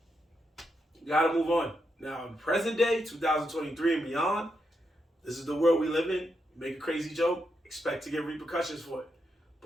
you gotta move on. Now, in present day, 2023 and beyond, this is the world we live in. You make a crazy joke, expect to get repercussions for it.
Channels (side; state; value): both; normal; correlation 0.83